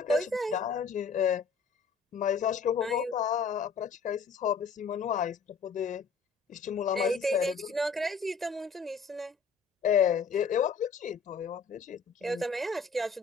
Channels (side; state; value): right; quieter; 5.4 dB